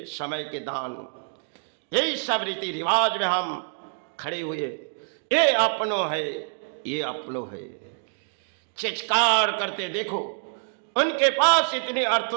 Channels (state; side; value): silent; left; digital silence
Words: समय के दान। यही सब रीति रिवाज में हम खड़े हुए, ये अपनों है, ये अपनों है, चित्कार करते देखो उनके पास इतने